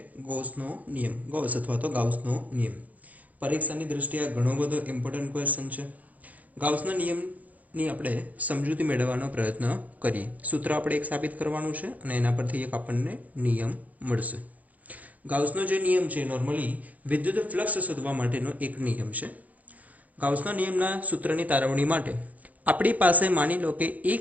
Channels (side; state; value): left; late; 0.077 ms